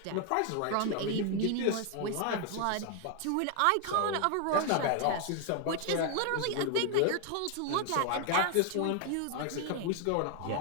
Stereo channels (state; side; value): different; both; correlation 0.00